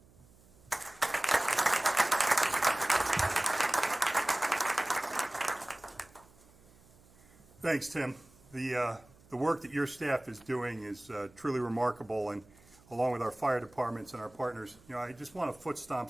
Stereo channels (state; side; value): noise; right; hum, 27 dB below the sound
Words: Thanks, Tim. The work that your staff is doing is truly remarkable, and along with our fire departments and our partners, I just want to foot stomp